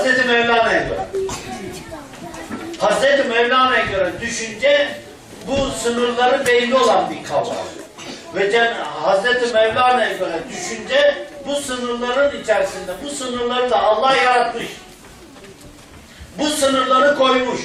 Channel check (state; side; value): identical; both; correlation 1.00